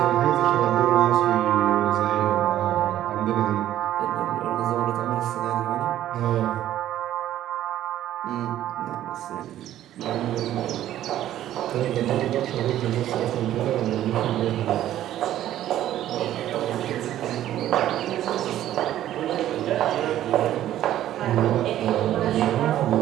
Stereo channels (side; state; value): left; quieter; 12.6 dB